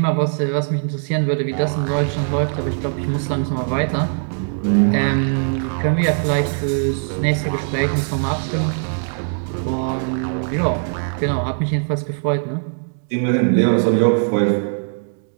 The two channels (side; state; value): left; silent; digital silence